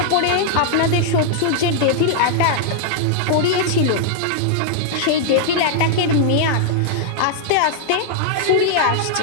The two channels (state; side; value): different; both; correlation -0.01